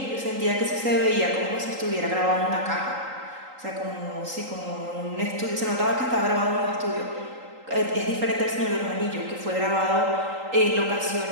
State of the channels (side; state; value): left; late; 3.8 ms